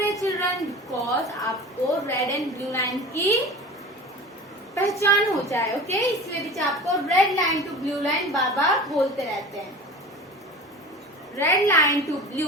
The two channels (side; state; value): both; normal; correlation 0.36